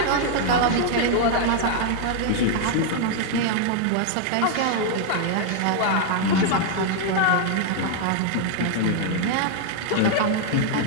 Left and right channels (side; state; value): both; different; correlation 0.00